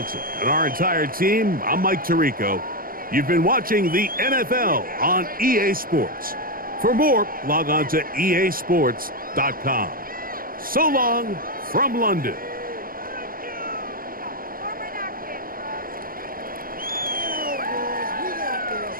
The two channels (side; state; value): left; late; 0.41 ms